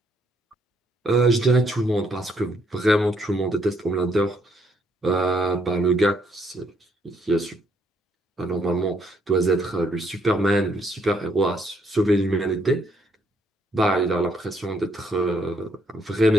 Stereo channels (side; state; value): both; normal; correlation 0.70